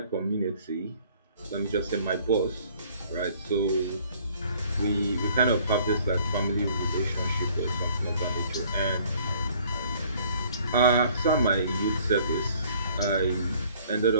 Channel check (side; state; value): both; inverted; correlation -0.57